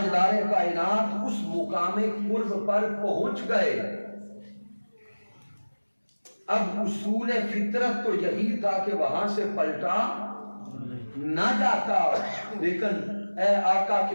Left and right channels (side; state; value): both; inverted; correlation -1.00